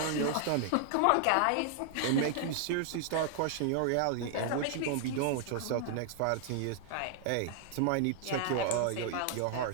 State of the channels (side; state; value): both; different; correlation 0.00